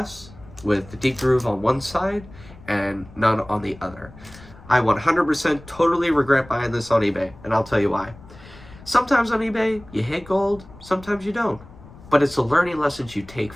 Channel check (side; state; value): left; noise; rumble, 20 dB below the sound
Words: with the deep groove on one side and none on the other. I 100% totally regret buying this on eBay, and I'll tell you why. Sometimes on eBay, you hit gold, sometimes you don't. But it's the learning lessons you take